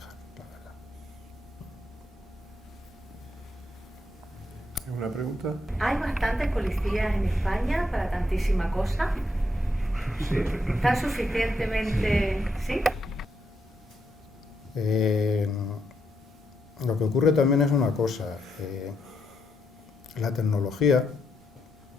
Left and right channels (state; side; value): normal; both; correlation 0.79